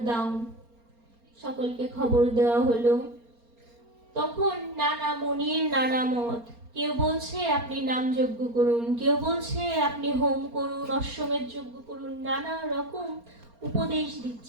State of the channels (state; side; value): late; left; 4.3 ms